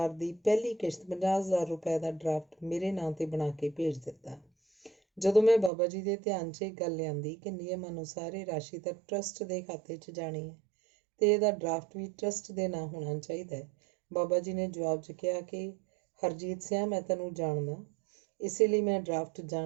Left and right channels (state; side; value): drops out; left; at 5.7 s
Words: ਦੀ ਪਹਿਲੀ ਕਿਸ਼ਤ 50,000 ਰੁਪਏ ਦਾ ਡਰਾਫਟ ਮੇਰੇ ਨਾਂ ਤੇ ਬਣਾ ਕੇ ਭੇਜ ਦਿੱਤਾ। ਜਦੋਂ ਮੈਂ ਬਾਬਾ ਜੀ ਦੇ ਧਿਆਨ 'ਚ ਇਹ ਗੱਲ ਲਿਆਂਦੀ ਕਿ ਨਿਯਮ ਅਨੁਸਾਰ ਇਹ ਰਾਸ਼ੀ ਤਾਂ ਟਰੱਸਟ ਦੇ ਖਾਤੇ 'ਚ ਜਾਣੀ ਹੈ ਤੇ ਇਹਦਾ ਡਰਾਫਟ ਵੀ ਟਰੱਸਟ ਦੇ ਨਾਂ ਹੋਣਾ ਚਾਹੀਦਾ ਹੈ, ਬਾਬਾ ਜੀ ਨੇ ਜਵਾਬ 'ਚ ਕਿਹਾ ਕਿ ਹਰਜੀਤ ਸਿਆਂ, ਮੈਂ ਤੈਨੂੰ ਜਾਣਦਾ, ਇਸੇ ਲਈ ਮੈਂ ਡਰਾਫਟ